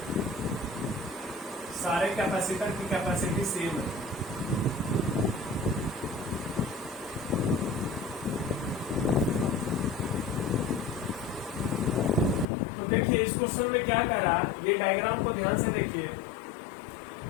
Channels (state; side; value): drops out; right; at 12.5 s